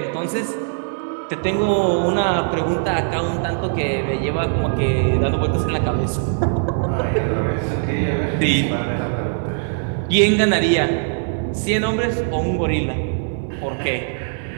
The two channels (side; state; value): left; silent; digital silence